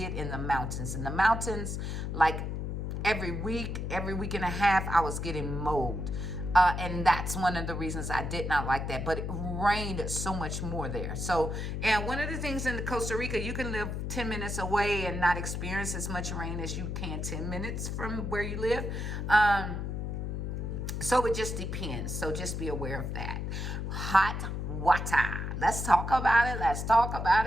in the mountains. In the mountains, like every week and a half, I was getting mold. And that's one of the reasons I did not like that. But it rained so much more there. So, and one of the things in Costa Rica, you can live 10 minutes away and not experience as much rain as you can 10 minutes from where you live. So it just depends. So just be aware of that. Hot water. Let's talk about it. Let's talk about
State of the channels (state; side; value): noise; left; hum, 3 dB below the sound